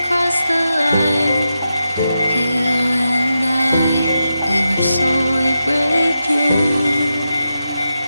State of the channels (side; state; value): both; inverted; correlation -0.88